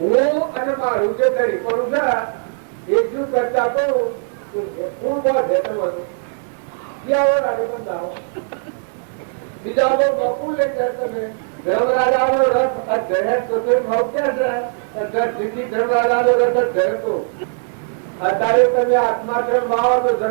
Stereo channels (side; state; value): left; silent; digital silence